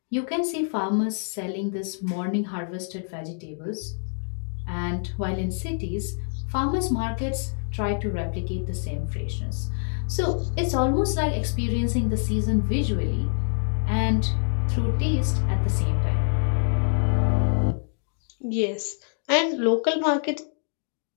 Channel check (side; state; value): right; silent; 60 dB below the other